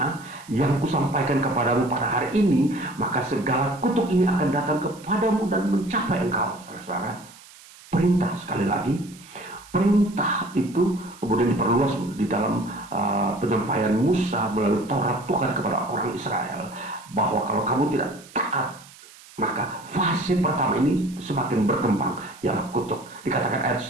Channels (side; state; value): right; noise; hiss, 22 dB below the sound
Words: yang kusampaikan kepadamu pada hari ini, maka segala kutuk ini akan datang kepadamu dan mencapai engkau. Saudara-saudara, perintah, sekali lagi, perintah itu kemudian diperluas di dalam penyampaian Musa melalui Taurat Tuhan kepada orang Israel, bahwa kalau kamu tidak taat, maka fase pertama ini semakin berkembang, ialah kutuk. Dikatakan ayat